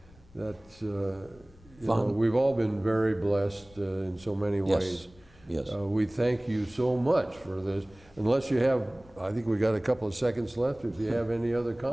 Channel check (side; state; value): left; noise; rumble, 26 dB below the sound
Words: that's you know, we've all been very blessed in so many ways. Yes. We thank you so much for this. Unless you have, I think we got a couple of seconds left. If you have any other